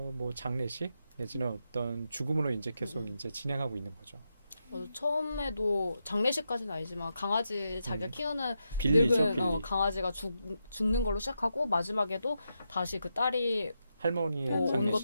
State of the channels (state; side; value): inverted; both; correlation -0.85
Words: 장례식 내지는 어떤 죽음으로 이제 계속 이제 진행하고 있는 거죠. 처음에도 장례식까지는 아니지만 강아지 자기가 키우는 빌리죠, 늙은 빌리. 강아지가 죽는 걸로 시작하고 마지막에도 다시 그 딸이 할머니의 온 장례식.